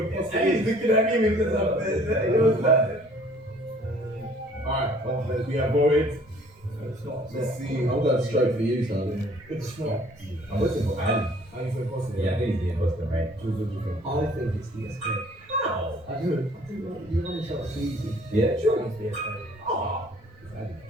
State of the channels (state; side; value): normal; both; correlation 0.56